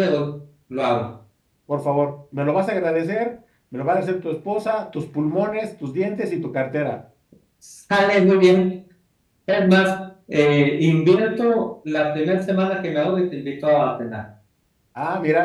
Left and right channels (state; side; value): identical; both; correlation 1.00